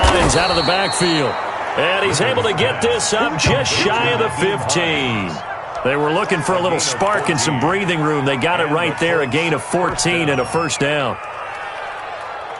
out of the backfield. And he's able to get this up just shy of the 15. They were looking for a little spark and some breathing room. They got it right there, a gain of 14 and a first down.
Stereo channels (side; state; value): both; identical; correlation 1.00